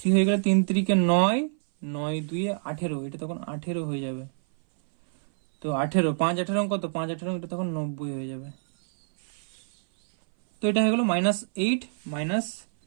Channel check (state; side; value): silent; left; 59 dB below the other